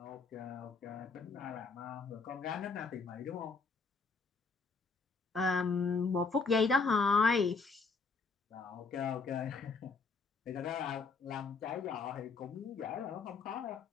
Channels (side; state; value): right; quieter; 4.6 dB